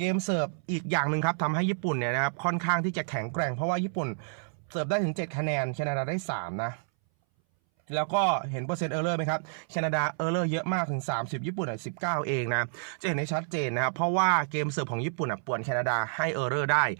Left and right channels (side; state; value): left; silent; 58 dB below the other